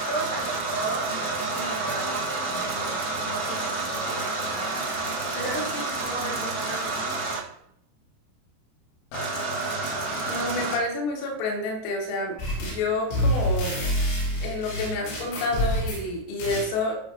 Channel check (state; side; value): late; right; 27 ms